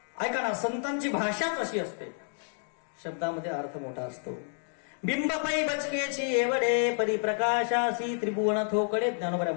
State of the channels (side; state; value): right; silent; 58 dB below the other